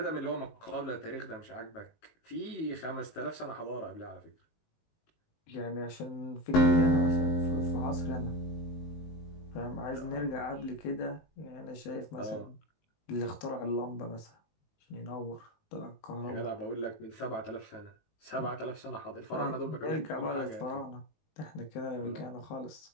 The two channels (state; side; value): late; right; 19 ms